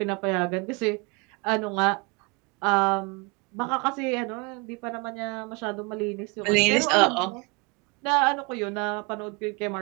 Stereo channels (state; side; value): quieter; left; 29.2 dB